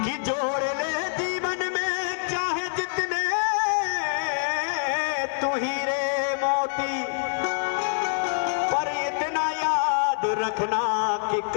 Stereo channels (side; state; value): right; silent; 59 dB below the other